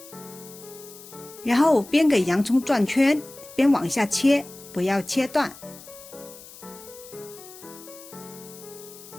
然后边给洋葱转圈，边往下切，不要切断。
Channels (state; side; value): noise; left; hiss, 18 dB below the sound